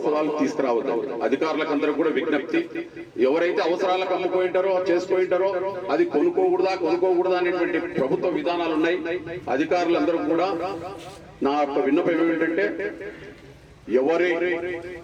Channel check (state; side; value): identical; both; correlation 1.00